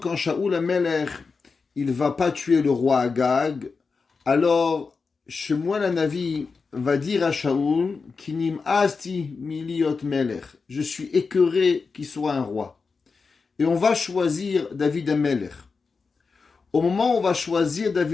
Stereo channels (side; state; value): right; quieter; 4.7 dB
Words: Shaoul Amelech, il va pas tuer le roi Agag, alors Shemuel Hanavi va dire à Shaoul, Kinim asti miliot melech, je suis écœuré qu'il soit un roi. Et on va choisir David Amelech. Au moment où on va choisir